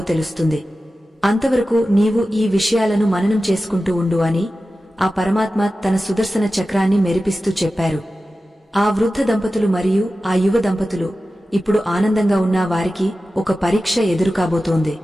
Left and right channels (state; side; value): normal; both; correlation 0.94